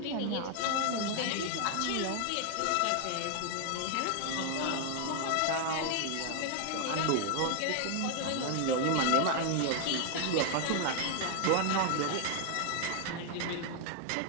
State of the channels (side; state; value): both; different; correlation 0.00